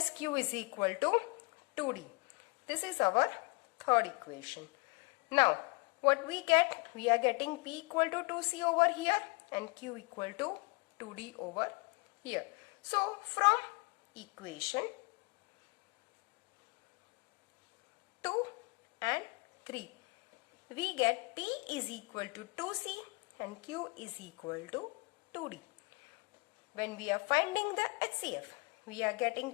Q is equal to 2D. This is our third equation. Now, what we get? We are getting P equal to 2C over here and Q equal to 2D over here. So, from equation 2 and 3, we get P is equal to 2C and Q is equal to 2D. When we are finding the HCF, we are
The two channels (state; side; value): quieter; right; 28.1 dB